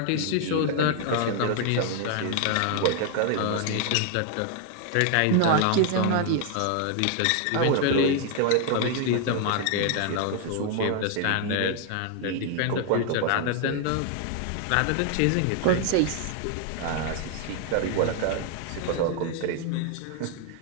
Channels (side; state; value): both; different; correlation 0.00